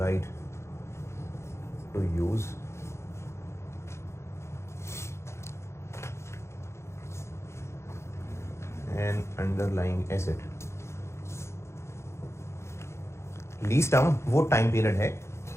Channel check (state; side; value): late; right; 0.13 ms